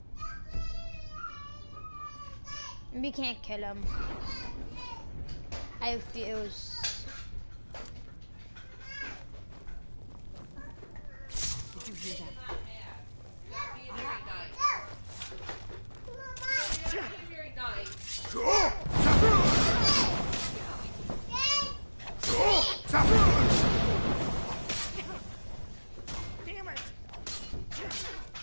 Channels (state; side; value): inverted; both; correlation -1.00